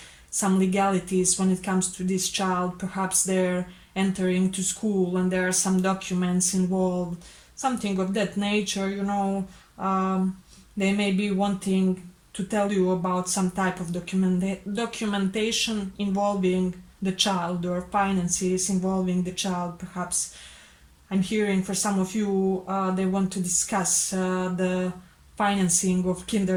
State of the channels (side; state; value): both; identical; correlation 1.00